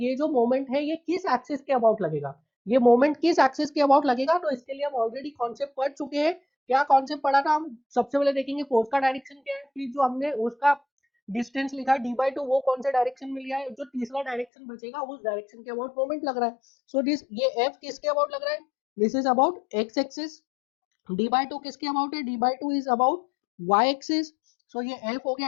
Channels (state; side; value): drops out; right; at 14.5 s